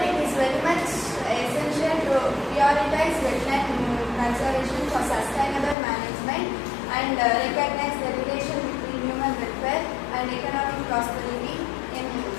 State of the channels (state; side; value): drops out; right; at 5.8 s